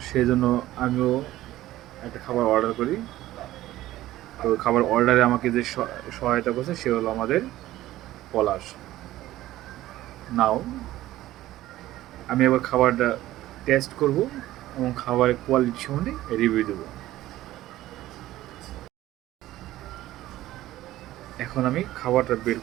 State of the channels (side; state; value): left; quieter; 15.2 dB